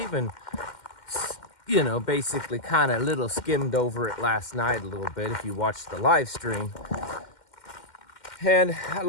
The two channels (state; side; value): late; right; 2.1 ms